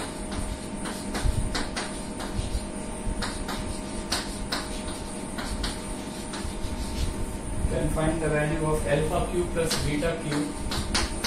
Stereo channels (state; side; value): identical; both; correlation 1.00